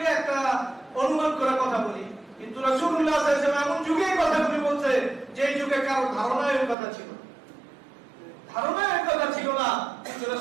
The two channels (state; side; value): drops out; left; at 6.8 s